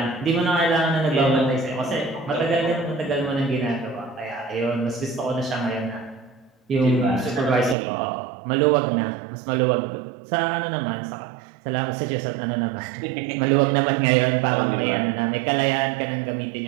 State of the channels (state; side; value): drops out; left; at 7.8 s